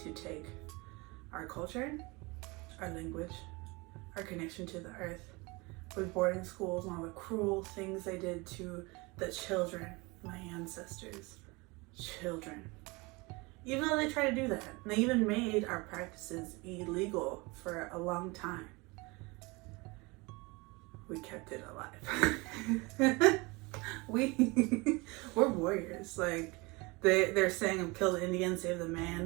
take our culture, our language, our connection to the earth, with boarding schools and all the cruel things they did to the children, my ancestors' children. Even though they tried to do that, they even made our practices illegal for a long time. We kept it alive. We're warriors. Like they're saying, kill the Indian, save the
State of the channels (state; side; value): quieter; left; 25.5 dB